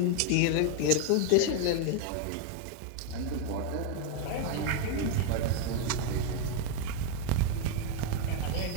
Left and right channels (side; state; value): both; different; correlation 0.01